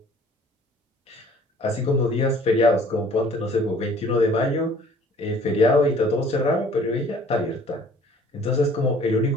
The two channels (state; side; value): normal; both; correlation 0.54